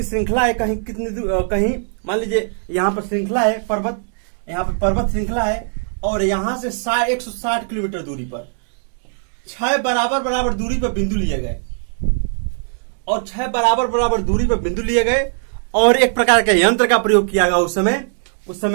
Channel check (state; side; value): silent; left; digital silence